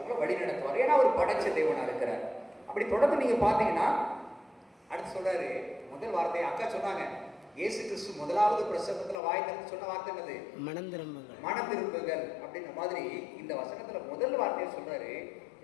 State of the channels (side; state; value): right; drops out; at 9.2 s